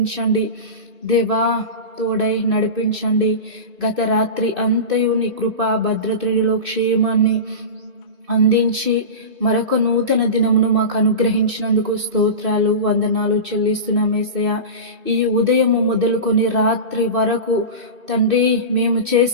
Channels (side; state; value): left; late; 2.6 ms